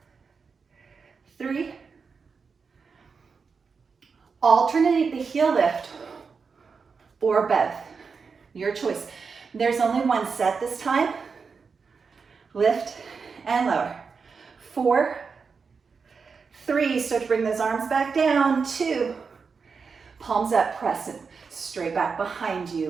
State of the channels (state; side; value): quieter; left; 5.3 dB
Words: 3. Alternate the heel lift or both. Your choice. There's only one set this time. Lift and lower. 4, 3, start to bring those arms back down. 2, palms up, press it straight back behind you,